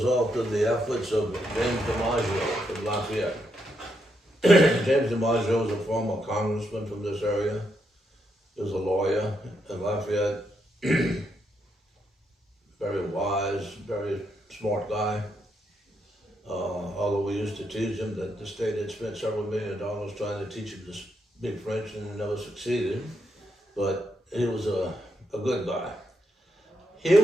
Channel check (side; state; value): both; normal; correlation 0.80